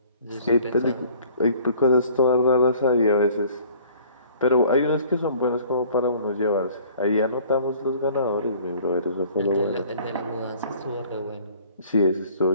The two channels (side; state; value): both; inverted; correlation -0.53